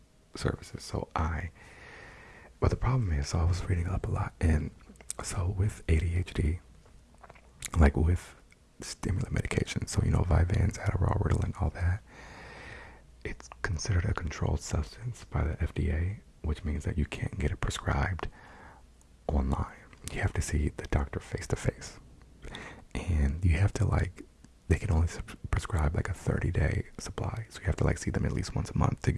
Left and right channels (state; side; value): identical; both; correlation 1.00